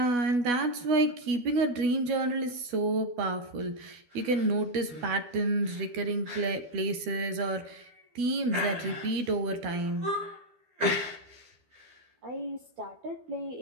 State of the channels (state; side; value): late; left; 12 ms